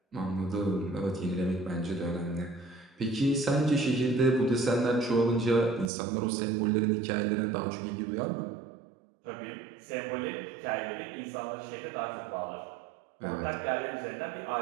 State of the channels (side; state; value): left; drops out; at 5.9 s